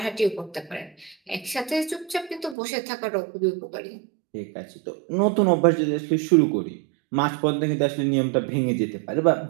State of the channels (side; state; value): left; drops out; at 2.6 s